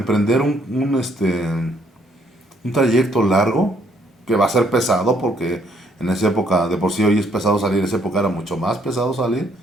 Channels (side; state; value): both; normal; correlation 0.68